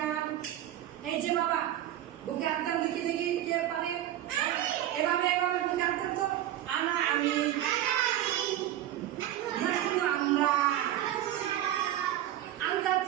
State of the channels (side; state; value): left; quieter; 12.8 dB